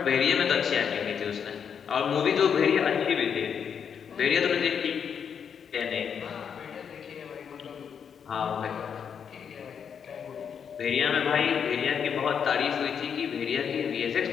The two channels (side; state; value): right; quieter; 7.4 dB